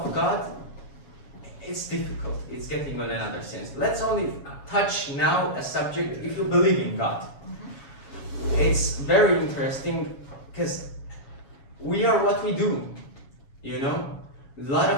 God, it's difficult. It's getting on another sense. Let's only touch now a subject if you believe in God. It's very interesting, because we are what we do, you know? A lot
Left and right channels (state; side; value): late; right; 7.2 ms